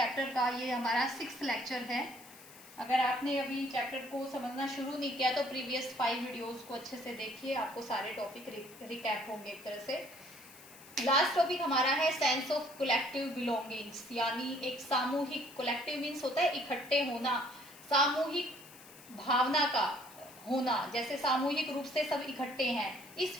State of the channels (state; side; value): noise; left; hiss, 20 dB below the sound